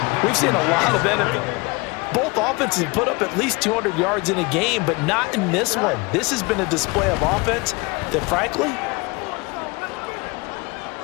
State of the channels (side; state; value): right; quieter; 26.3 dB